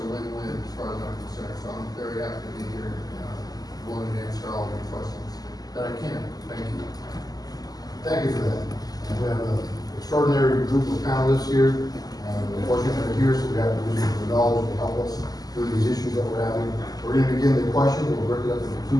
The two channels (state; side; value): late; right; 0.18 ms